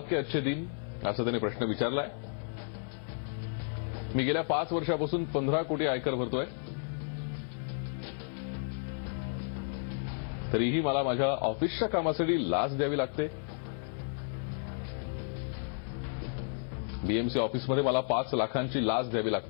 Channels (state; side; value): silent; right; 56 dB below the other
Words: अच्छे दिन असं त्याने प्रश्न विचारलाय। मी गेल्या 5 वर्षापासून 15 कोटी आयकर भरतोय, तरीही मला माझ्या ऑफिसच्या कामासाठी लाच द्यावी लागते। बीएमसी ऑफिसमध्ये मला 5 लाखांची लाच द्यावी